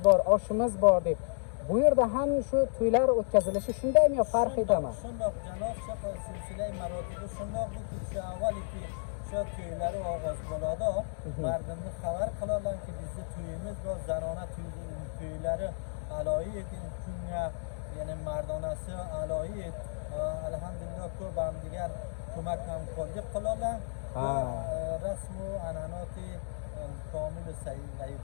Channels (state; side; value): silent; right; digital silence